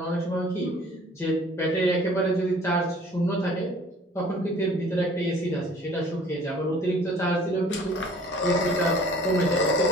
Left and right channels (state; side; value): normal; both; correlation 0.52